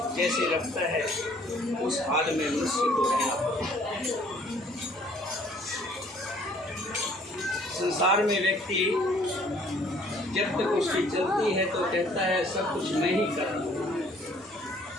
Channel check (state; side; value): normal; both; correlation 0.59